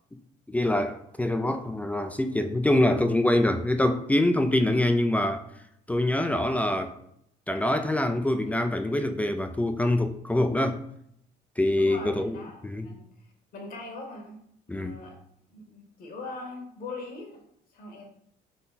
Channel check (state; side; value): normal; both; correlation 0.89